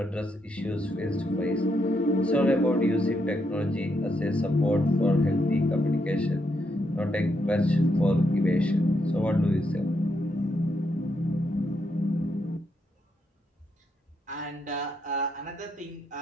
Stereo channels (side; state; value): both; normal; correlation 0.79